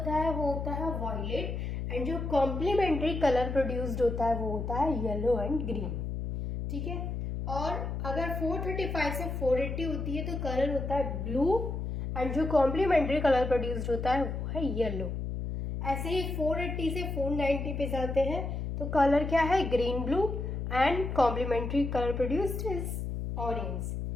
है वो होता है वायलेट, एंड जो कॉम्प्लीमेंट्री कलर प्रोड्यूस्ड होता है वो होता है येलो एंड ग्रीन। ठीक है, और अगर 435 से 480 होती है तो कलर होता है ब्लू, एंड जो कॉम्प्लीमेंट्री कलर प्रोड्यूस्ड होता है वो है येलो। ऐसे ही 480 से 490 पे जाते हैं तो कलर क्या है, green blue, and complementary colour produced is orange.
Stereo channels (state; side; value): noise; left; hum, 4 dB below the sound